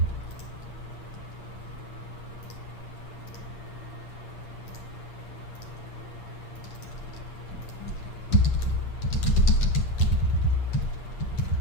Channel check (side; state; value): right; late; 8.6 ms